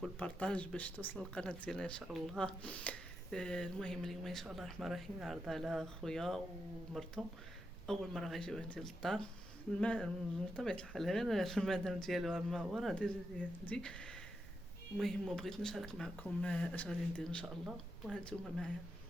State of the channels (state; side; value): noise; right; rumble, 16 dB below the sound